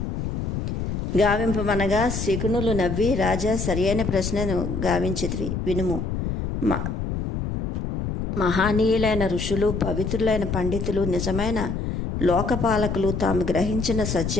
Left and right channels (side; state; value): left; noise; rumble, 3 dB below the sound